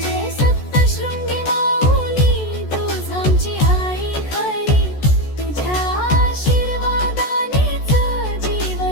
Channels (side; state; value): right; late; 14 ms